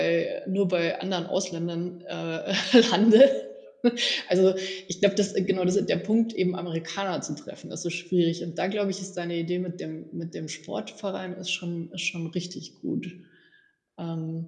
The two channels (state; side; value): identical; both; correlation 1.00